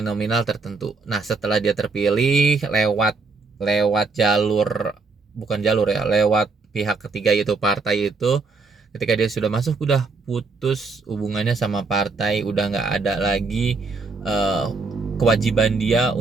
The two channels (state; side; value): quieter; left; 4.1 dB